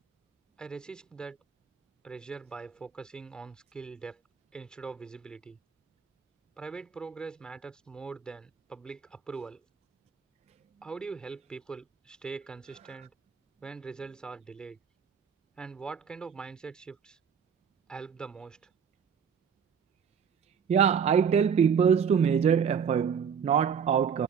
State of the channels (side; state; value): left; quieter; 7.1 dB